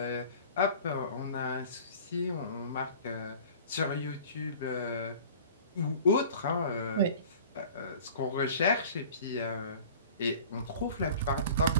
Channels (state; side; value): inverted; both; correlation -0.44